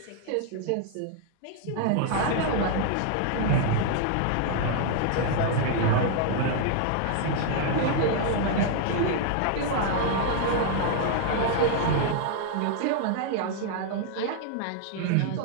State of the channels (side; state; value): both; different; correlation 0.00